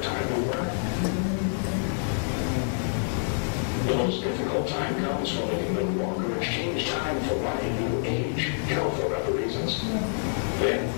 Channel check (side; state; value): right; silent; 60 dB below the other